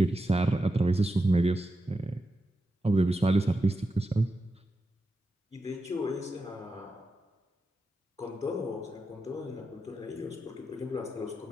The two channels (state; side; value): normal; both; correlation 0.89